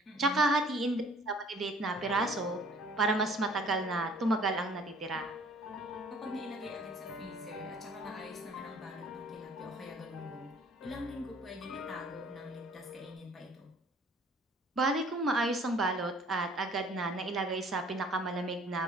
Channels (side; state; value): both; normal; correlation 0.54